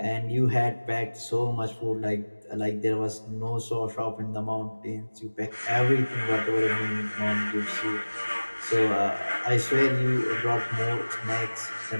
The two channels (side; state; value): both; inverted; correlation -1.00